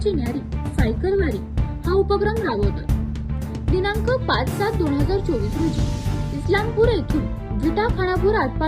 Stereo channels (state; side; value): identical; both; correlation 1.00